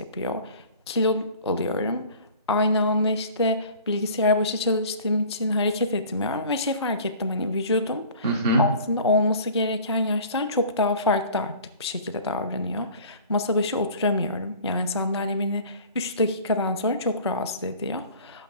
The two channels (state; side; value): inverted; both; correlation -0.45